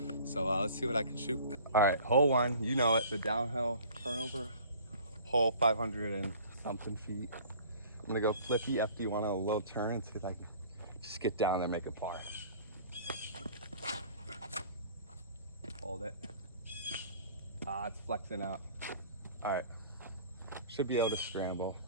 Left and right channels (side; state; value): both; inverted; correlation -0.47